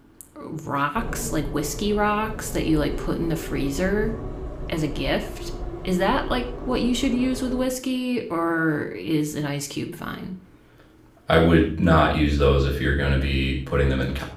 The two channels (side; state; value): both; identical; correlation 1.00